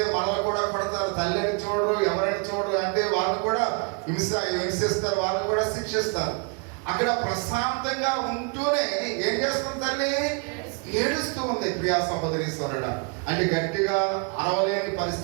మనల్ని కూడా కొడతారు, తల్లిని చూడరు, ఎవరైనా చూడరు, అంటే వాళ్ళు కూడా హింసిస్తారు, వాళ్ళని కూడా శిక్షిస్తారు. అక్కడ ప్రశాంతంగా ఉంటూనే ఏం చేస్తుంది తల్లి? ఏడుస్తూ ఉంది. ప్రియా సహోదరీశ్వరుడ, అంటే గట్టిగా అరవలేని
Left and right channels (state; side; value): quieter; left; 34.3 dB